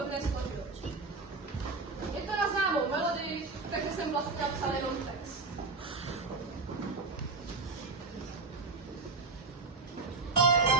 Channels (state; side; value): quieter; left; 3.9 dB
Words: dne složil. Je to na známou melodii, takže jsem vlastně napsal jenom text.